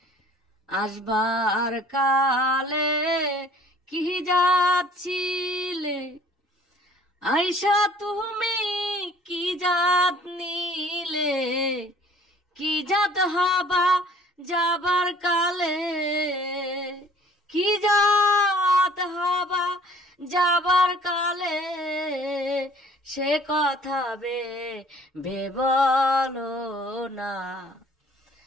আসবার কালে কি যাচ্ছিলে, আয়শা তুমি কি জাত নিলে। কি জাত হবা যাবার কালে, কি জাত হবা যাবার কালে। সে কথা বলো না।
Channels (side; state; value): both; normal; correlation 0.54